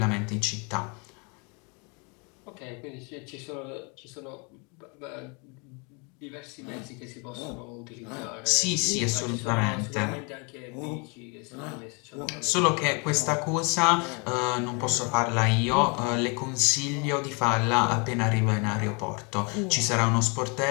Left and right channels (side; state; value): right; quieter; 33.1 dB